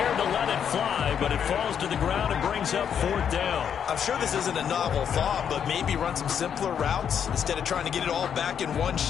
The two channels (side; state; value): right; quieter; 8.1 dB